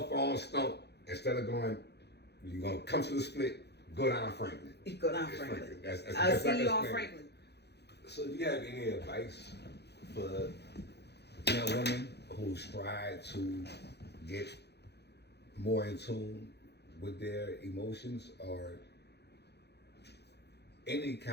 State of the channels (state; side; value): late; right; 0.48 ms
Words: on Stump instead of going, you're going to come to the split, go down Franklin. You go down Franklin. That's I'll like see you on Franklin. Franklin. So do you have any advice for young women who strive to get more in tune with their emotions or any